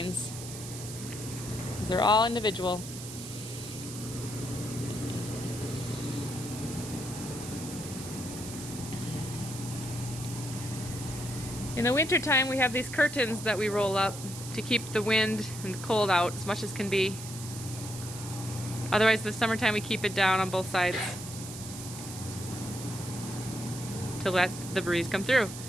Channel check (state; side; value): noise; right; hiss, 11 dB below the sound